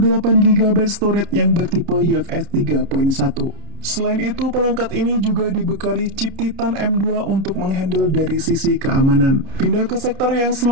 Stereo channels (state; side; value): late; left; 30 ms